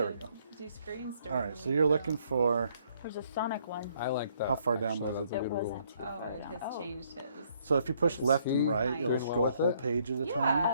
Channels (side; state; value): both; inverted; correlation -0.68